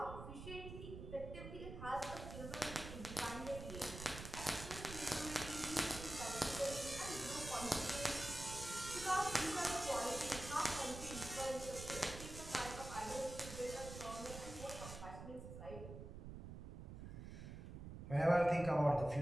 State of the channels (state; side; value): noise; right; rumble, 9 dB below the sound